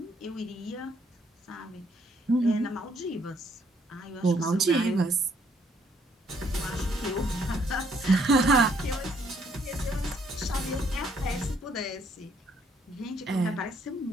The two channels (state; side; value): normal; both; correlation 0.68